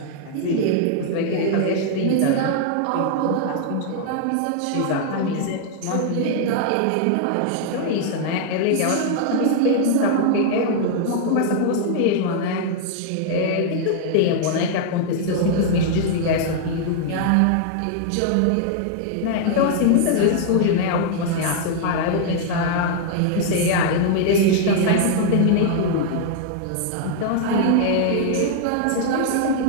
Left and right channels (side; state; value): both; different; correlation -0.01